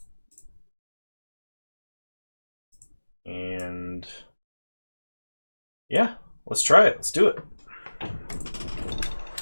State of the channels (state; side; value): inverted; both; correlation -1.00